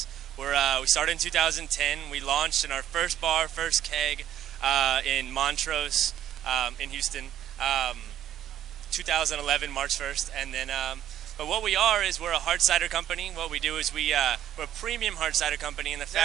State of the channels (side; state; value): left; quieter; 11.4 dB